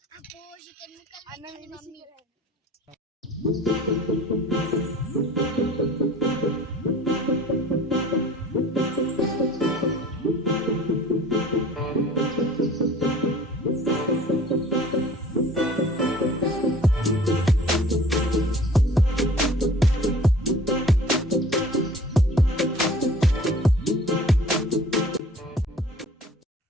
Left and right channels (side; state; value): both; normal; correlation 0.47